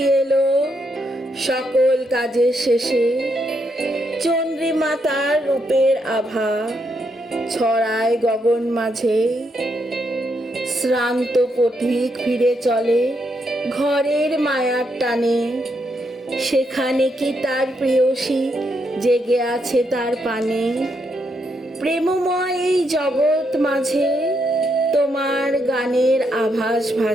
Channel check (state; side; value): normal; both; correlation 0.78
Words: এলো, সকল কাজের শেষে চন্দ্রিমা তার রূপের আভা ছড়ায় গগন মাঝে। শ্রান্ত পথিক ফিরে চলে ঘরের মায়ার টানে, সেখানে কি তার প্রেয়সী জেগে আছে তার পানে। প্রেমময় এই জগৎ মাঝে তোমার গানের আভাস